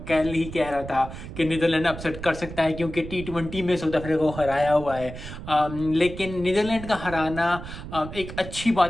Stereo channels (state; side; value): noise; right; rumble, 11 dB below the sound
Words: कल ही कह रहा था कि नीदरलैंड अपसेट कर सकता है क्योंकि T20 में साउथ अफ्रीका को हराया हुआ है। लेकिन नीदरलैंड का हराना एक अच्छी